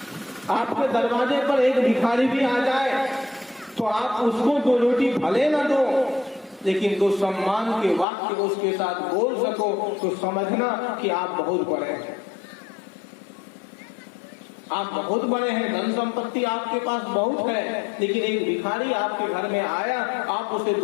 आपके दरवाजे पर एक भिखारी भी आ जाए तो आप उसको 2 रोटी भले न दो, लेकिन 2 सम्मान के वाक्य उसके साथ बोल सको, तो समझना कि आप बहुत बड़े हैं। आप बहुत बड़े हैं, धन संपत्ति आपके पास बहुत है, लेकिन एक भिखारी आपके घर में आया, आप उसे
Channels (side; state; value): right; drops out; at 8.1 s